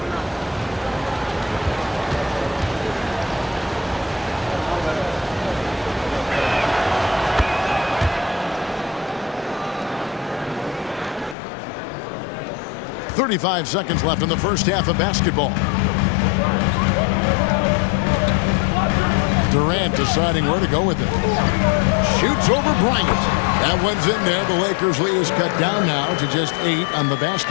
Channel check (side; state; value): right; drops out; at 11.4 s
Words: .35 seconds left in the first half of basketball. Durant deciding where to go with it. Shoots over Bryant. That one's in there. The Lakers lead is cut down now to just 8 on the